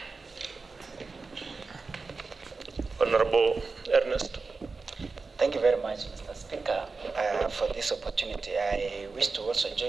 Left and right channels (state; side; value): quieter; left; 4.2 dB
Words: Honorable Ernest. Thank you very much, Mr. Speaker, for this opportunity. I wish to also